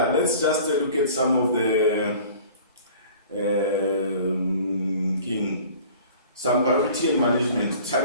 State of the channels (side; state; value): both; inverted; correlation -0.46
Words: let's just look at some of the some priority and management,